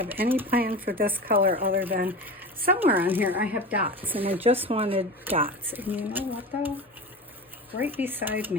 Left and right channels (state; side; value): normal; both; correlation 0.30